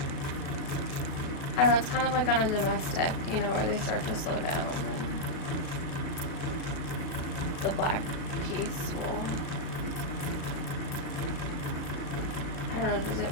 I don't know, it's kind of like on a domestic, you know, where they start to slow down and the black piece will, I don't know, does it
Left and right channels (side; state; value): right; late; 37 ms